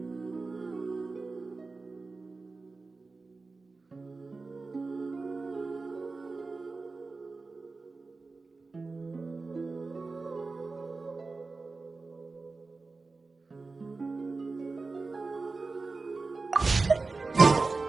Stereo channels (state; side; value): quieter; left; 3.9 dB